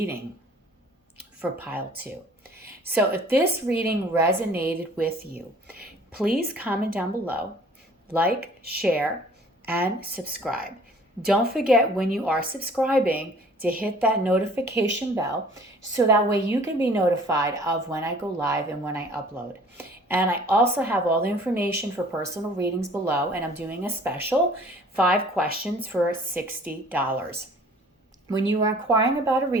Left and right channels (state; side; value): normal; both; correlation 0.52